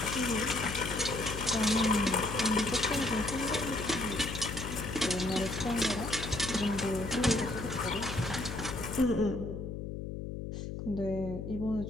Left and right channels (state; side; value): noise; left; hum, 6 dB below the sound